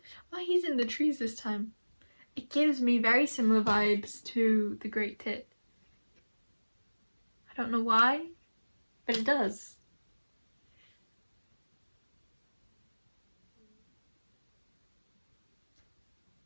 Oh, he's in the trees this time. It gives me very similar vibes to the Great Tit. I don't know why, but it does.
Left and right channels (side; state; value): both; inverted; correlation -1.00